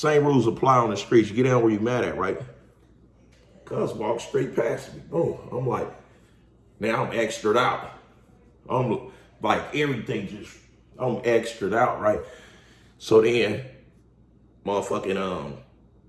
rules apply on the streets. You get down where you mad at, right? Cuz walk straight past me. Boom. I'm like, now I'm extra'd out. I'm like, everything just, I'm extra'd out, right? So then, motherfucking,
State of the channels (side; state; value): both; identical; correlation 1.00